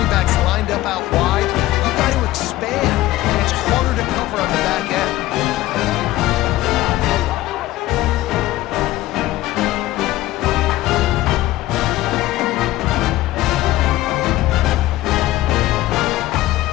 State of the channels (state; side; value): quieter; right; 16.3 dB